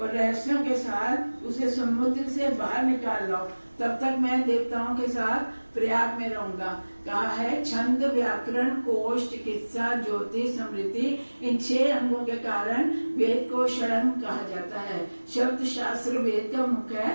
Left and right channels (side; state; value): both; inverted; correlation -1.00